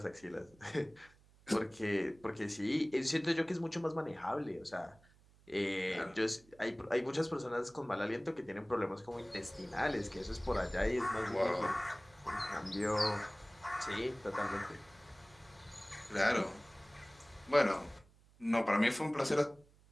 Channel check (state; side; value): noise; right; hum, 27 dB below the sound